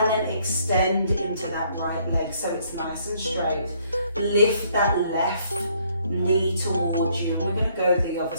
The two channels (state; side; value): inverted; both; correlation -0.66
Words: then extend into that right leg so it's nice and straight. Lift that left knee towards you, and we're going to go the other